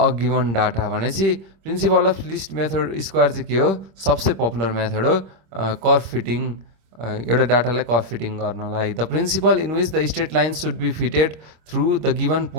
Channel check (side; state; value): left; late; 26 ms